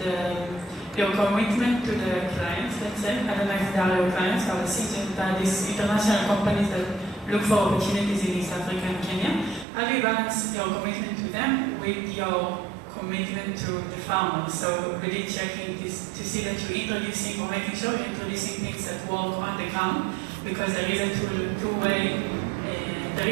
your commitment to the clients, let's say? I don't know if they are your clients, I was thinking that these international companies that look for opportunities in East Africa and Kenya. How do you balance your commitment to them with your commitment to the farmers? So really checking this to see that you're introducing or making sure you're introducing things that work on the ground, because there is a two-way, there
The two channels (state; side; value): drops out; left; at 9.7 s